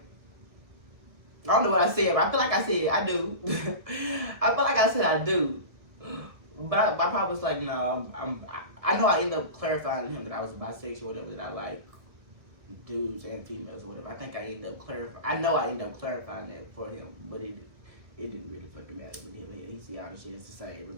I don't know what I said, but I feel like I said I do. I feel like I said I do. But my pop was like, no, I know I ended up clarifying to him that I was bisexual, whatever, that I like dudes and females or whatever. I think I ended up clarifying. I know I ended up clarifying that for him, but it didn't really fucking matter with him. He see all the shit is the same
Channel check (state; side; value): late; left; 1.6 ms